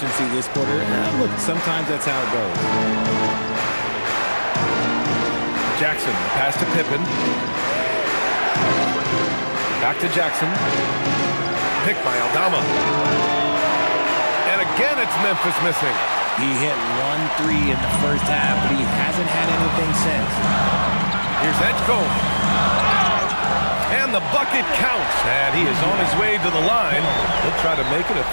this quarter. Look, sometimes that's how it goes. Jackson, pass to Pippen. Back to Jackson. Picked by Aldama. And again, it's Memphis missing. He hit 1 3 in the first half, but he hasn't had anything since. Here's Edgecombe. And the bucket counts. And he is on his way to the line. He'll try to make it a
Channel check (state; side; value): inverted; both; correlation -1.00